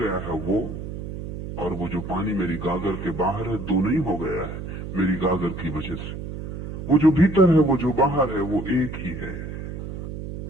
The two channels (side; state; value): right; noise; hum, 8 dB below the sound